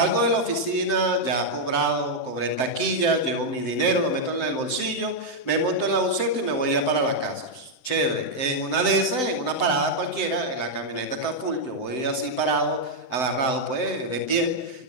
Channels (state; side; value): late; right; 7.8 ms